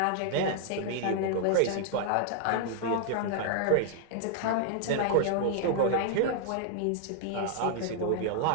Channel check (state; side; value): different; both; correlation 0.00